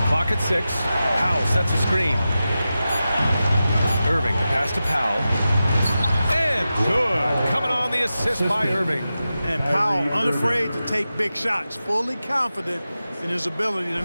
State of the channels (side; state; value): both; inverted; correlation -0.93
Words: Clock at 6. Powell sets a screen. Irving, the pass to Powell. And good. Coming on the assist by Irving. And Powell unafraid to take big shots, fully confident in his ability to